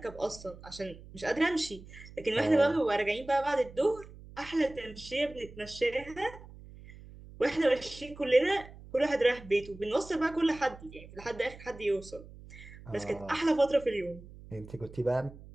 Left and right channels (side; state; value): right; noise; hum, 18 dB below the sound